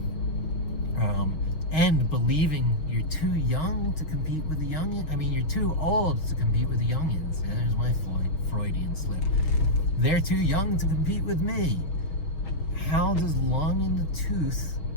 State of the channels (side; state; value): right; late; 6.4 ms